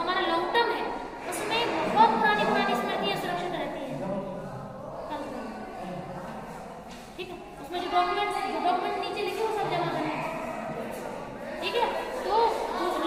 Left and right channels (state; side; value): identical; both; correlation 1.00